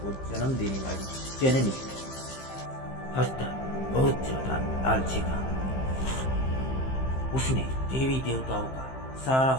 जन्म देने वाली जननी। हस्तर बहुत ज्यादा लालची था। उसने देवी देवताओं का सारा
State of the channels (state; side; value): late; right; 15 ms